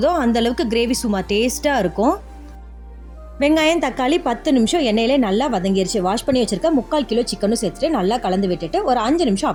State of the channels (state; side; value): identical; both; correlation 1.00